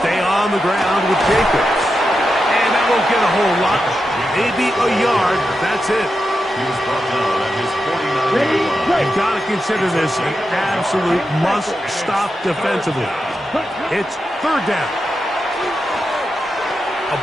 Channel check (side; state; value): both; normal; correlation 0.88